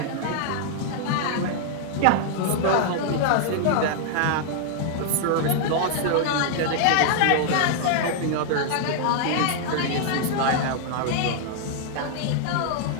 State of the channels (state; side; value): different; both; correlation -0.01